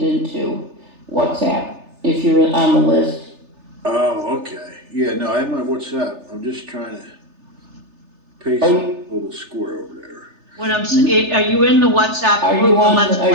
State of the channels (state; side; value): late; left; 3.3 ms